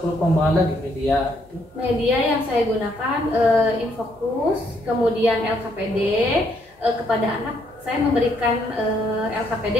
pengembangan lagi media itu? Media yang saya gunakan Infocus, kemudian LKPD. Kepada anak saya memberikan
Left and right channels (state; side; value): normal; both; correlation 0.71